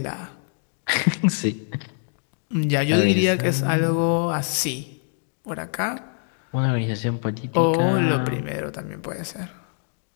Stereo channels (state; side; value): silent; right; digital silence